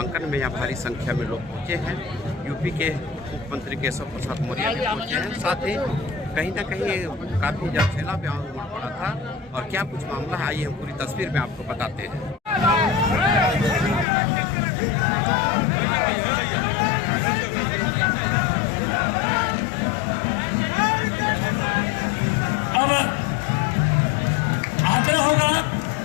में यहाँ भारी संख्या में लोग पहुँचे हैं। यूपी के मुख्यमंत्री केशव प्रसाद मौर्य भी पहुँचे हैं। साथ ही कहीं ना कहीं काफ़ी जलसेला भी उमड़ पड़ा था। और क्या कुछ मामला है, आइए हम पूरी तस्वीर में आपको बताते हैं। होगा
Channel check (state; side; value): drops out; right; at 14.1 s